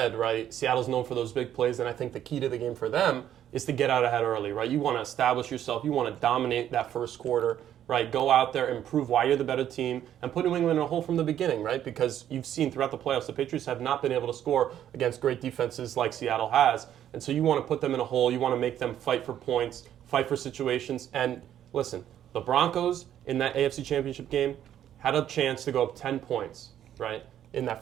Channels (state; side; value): quieter; left; 10.8 dB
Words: right, Seattle's known for those big plays, and I think the key to the game for them is to get out ahead early, right? You want to establish yourself. You want to dominate that first quarter, right? Go out there and prove why you're the better team and put New England in a hole from the beginning, right? Because you've seen throughout the playoffs, the Patriots have not been able to score against great defenses like Seattle has. And so you want to put them in a hole. You want to make them fight for points, fight for situations. And listen, the Broncos in that AFC Championship game had a chance to go up 10 points, right, in